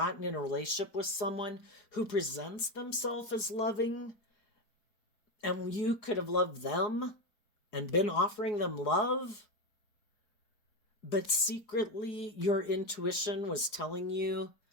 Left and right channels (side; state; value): right; late; 4.8 ms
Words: in a relationship with someone who presents themselves as loving, and you could have loved them and been offering them love, but secretly your intuition was telling you